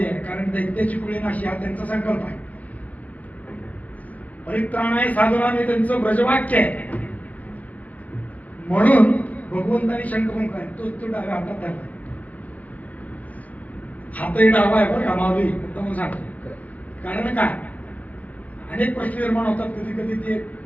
कारण दैत्याची कुळी नाशी हा त्यांचा संकल्प आहे. परित्राणाय साधनाने त्यांचं ब्रजवाक्य आहे. म्हणून भगवंतानी शंख फुंकलाय. तो डाव्या हातात धरला. हातही डावा आहे बरं का, माऊली मुद्दाम सांगतो. कारण काय, अनेक प्रश्न निर्माण होतात. कधी कधी ते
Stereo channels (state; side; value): late; right; 0.075 ms